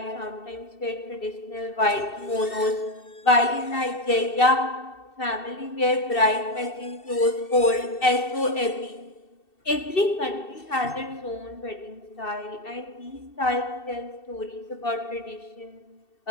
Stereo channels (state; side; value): late; right; 2.7 ms